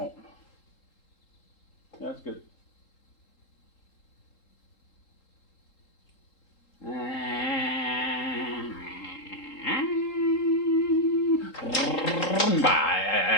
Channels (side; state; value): right; late; 3.8 ms